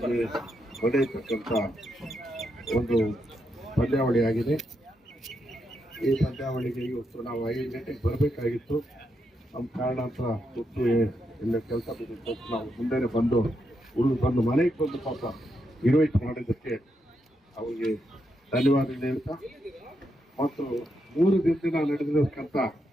ನಡೆಯತಕ್ಕಂಥ ಒಂದು ಪಂದ್ಯಾವಳಿಯಾಗಿದೆ. ಈ ಪಂದ್ಯಾವಳಿಗೆ ಇವತ್ತು ನಾವು 5 ಗಂಟೆಗೆ ಬರಬೇಕಾಗಿತ್ತು. ನಮ್ಮ ಕಾರಣಾಂತರ ಗೊತ್ತು ಇಲ್ಲ ಕೆಲಸ ಬಿದ್ದು ನಾವು ಮುಂದೆನೆ ಬಂದು ಬಂದು ಮನೆಗೆ ಬಂದು ಪಾಪ ಇನ್ವೈಟ್ ಮಾಡಿದ್ದಕ್ಕೆ ಅವರಿಗೆ ಧನ್ಯವಾದ ಹೇಳ್ತಾ ಮತ್ತು 3 ದಿನದಿಂದ ನಡೆದಿರತಕ್ಕಂಥ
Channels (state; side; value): normal; both; correlation 0.82